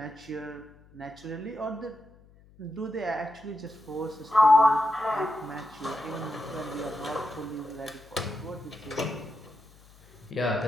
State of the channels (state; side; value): noise; left; hum, 26 dB below the sound